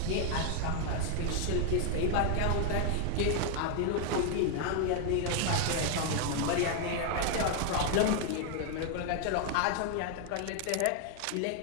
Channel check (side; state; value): both; different; correlation 0.00